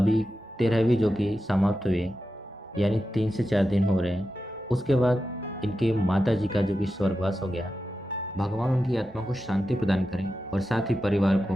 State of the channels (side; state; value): both; normal; correlation 0.90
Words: 13वीं जो कि समाप्त हुई, यानी 3 से 4 दिन हो रहे हैं। उसके बाद इनके माता जी का जो कि स्वर्गवास हो गया। भगवान उनकी आत्मा को शांति प्रदान करें और साथ ही परिवार